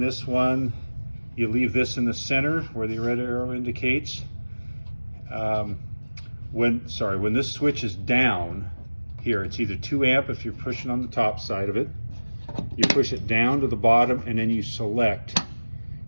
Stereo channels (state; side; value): inverted; both; correlation -1.00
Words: one, you leave this in the center where the red arrow indicates. When this switch is down here, it's either 2 amp if you're pushing on the top side of it. You push it down to the bottom and then you select